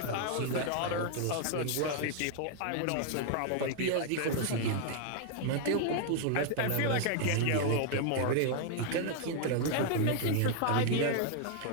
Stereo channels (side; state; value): both; different; correlation 0.00